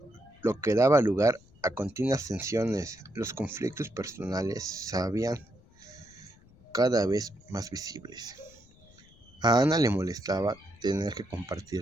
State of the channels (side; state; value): left; noise; rumble, 26 dB below the sound